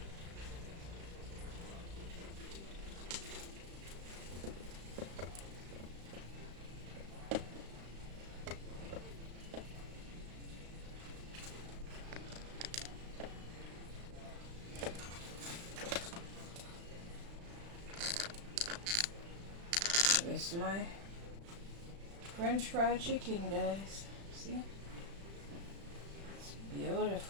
This is my French fried chicken, guys. See? It's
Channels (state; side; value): late; left; 35 ms